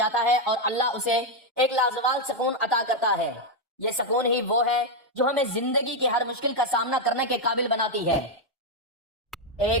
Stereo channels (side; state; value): both; normal; correlation 0.03